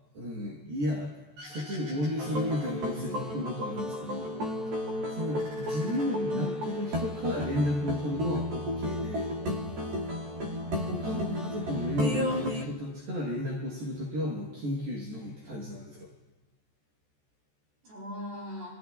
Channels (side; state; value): left; late; 14 ms